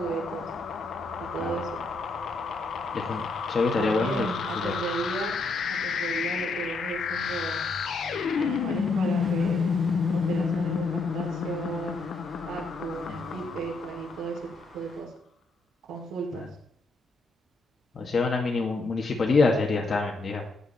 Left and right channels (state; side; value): quieter; right; 3.3 dB